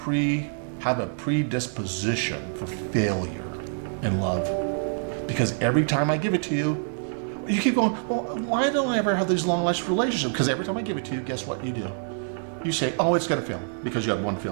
have a predisposition for failure in love. Because every time I give it to you, you keep going, well, why don't I ever have these long lasting relationships? Because every time I give it to you, guess what you do? You say, oh, it's going to fail because you had one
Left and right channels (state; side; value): silent; left; 61 dB below the other